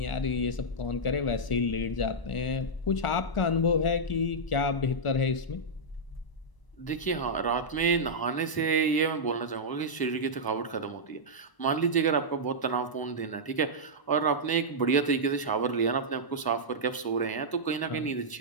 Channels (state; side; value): late; right; 1.0 ms